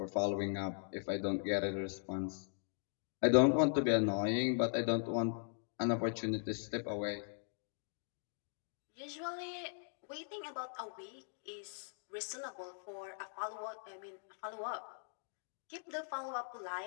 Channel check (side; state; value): right; silent; digital silence